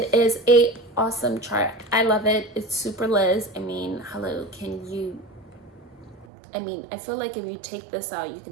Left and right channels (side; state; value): left; drops out; at 6.2 s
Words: is a awesome chart. I love it. It's super Liz. I mean, hello, can you, I mean, I feel like if you take this out, you